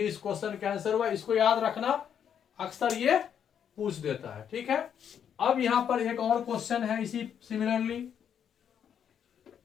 क्वेश्चन का आंसर हुआ। इसको याद रखना, अक्सर ये पूछ देता है, ठीक है। अब यहां पर एक और क्वेश्चन है इसी सिमिलरली।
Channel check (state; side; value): quieter; right; 8.5 dB